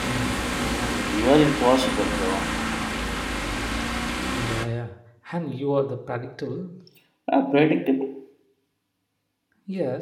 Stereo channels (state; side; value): identical; both; correlation 1.00